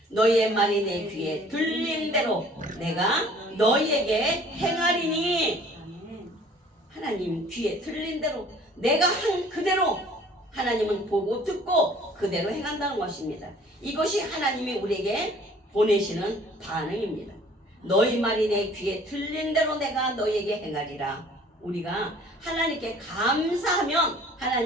너희의 말이 내 귀에 들린 대로 내가 너희에게 행하리니. 아멘. 하나님 귀에 들린 대로 내가 한 그대로 하나님은 보고 듣고 그대로 행한다는 것입니다. 이것이 하나님이 우리에게 보내시는 반응입니다. 너희 말이 내 귀에 들린 대로 내가 너희에게 행하리라. 우리가 하나님께 감사하면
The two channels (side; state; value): both; normal; correlation 0.53